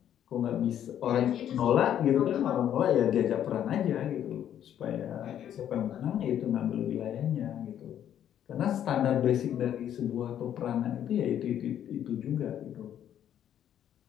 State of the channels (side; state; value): right; quieter; 10.3 dB